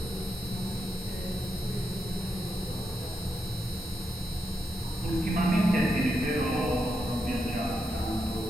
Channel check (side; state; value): both; normal; correlation 0.84